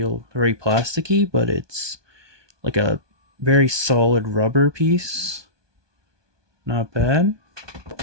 very plasticky, but it's like a very solid rubber piece. Not bad.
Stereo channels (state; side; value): late; left; 1.2 ms